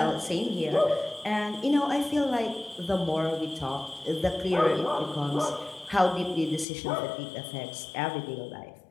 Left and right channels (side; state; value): right; drops out; at 6.7 s